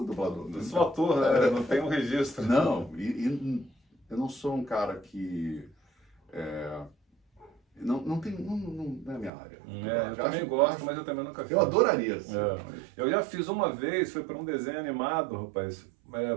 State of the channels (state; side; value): drops out; left; at 9.3 s